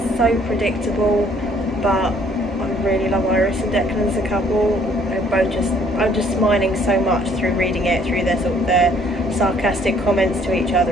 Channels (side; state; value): both; normal; correlation 0.62